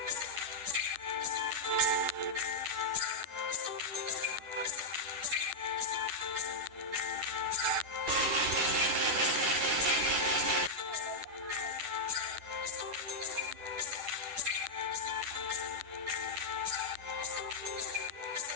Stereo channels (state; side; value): late; left; 10 ms